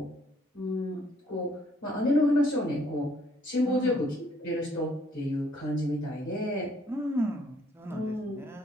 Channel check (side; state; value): both; normal; correlation 0.65